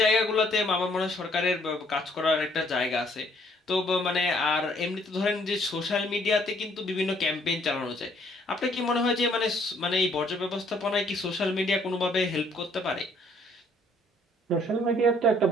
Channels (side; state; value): both; normal; correlation 0.64